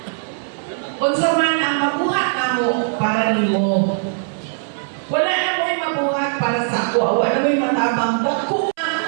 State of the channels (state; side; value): silent; left; 66 dB below the other